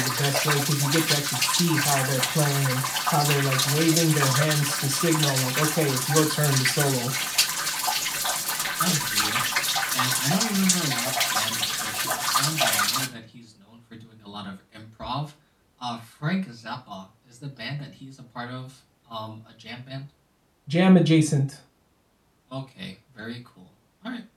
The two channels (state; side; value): identical; both; correlation 1.00